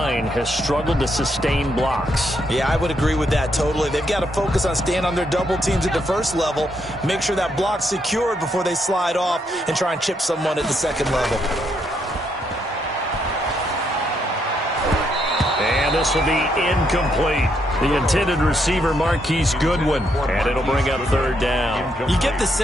has struggled to sustain blocks. Yeah, I would agree with that totally. They've got to focus on staying on their double teams at the first level, make sure that block's secured before they slide off and try and chip someone at the second level. And this will be incomplete. The intended receiver, Marquise Goodwin, and it'll bring up 3rd down. You get the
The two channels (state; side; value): normal; both; correlation 0.76